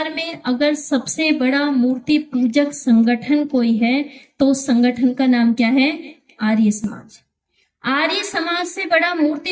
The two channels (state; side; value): identical; both; correlation 1.00